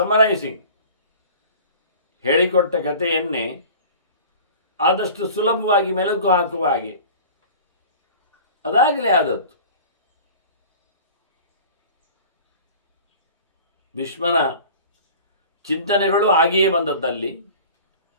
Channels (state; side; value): inverted; both; correlation -0.42